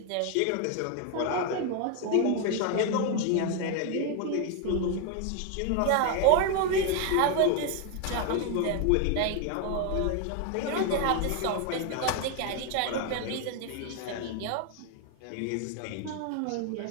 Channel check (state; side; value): different; both; correlation 0.01